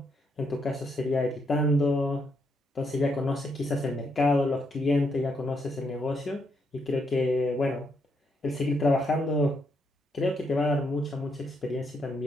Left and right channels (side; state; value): both; normal; correlation 0.77